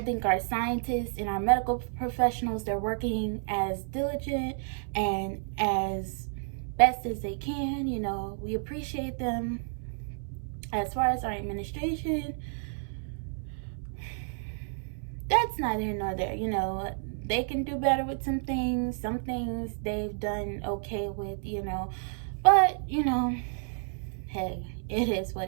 think our scientists and our medical professionals, they're working as diligent and as best as they can. We appreciate them. As far as our administration, that's neither here nor there. They can do better with some things. Some things they've done okay with, but hey, it is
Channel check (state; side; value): silent; left; 57 dB below the other